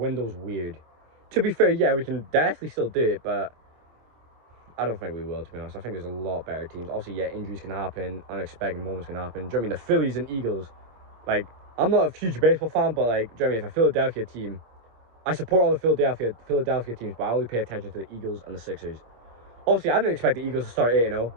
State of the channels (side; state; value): left; late; 26 ms